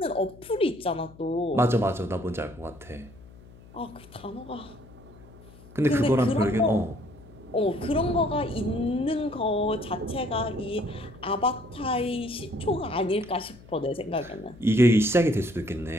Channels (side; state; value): left; noise; hum, 22 dB below the sound